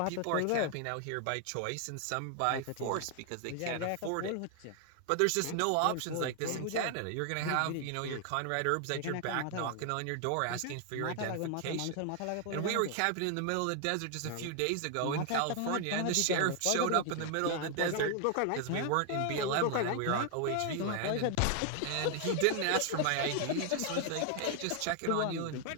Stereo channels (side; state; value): both; different; correlation 0.00